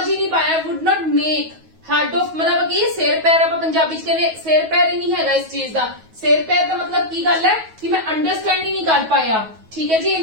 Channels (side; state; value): left; late; 9.3 ms